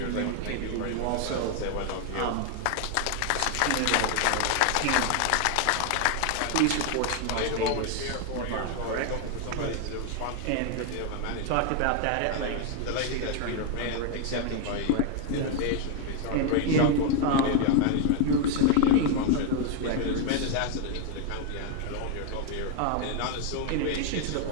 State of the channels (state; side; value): different; both; correlation 0.01